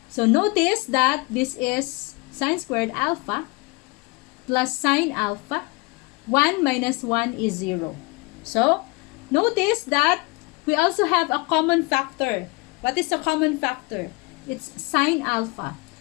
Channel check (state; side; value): quieter; right; 26.6 dB